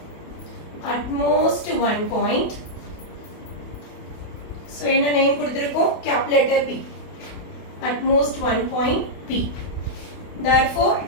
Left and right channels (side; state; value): right; late; 28 ms